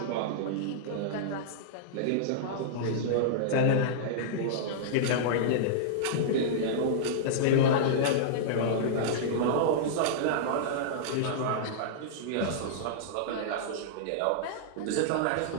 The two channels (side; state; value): both; different; correlation -0.02